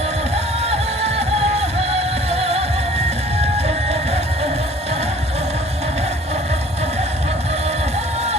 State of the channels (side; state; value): both; normal; correlation 0.52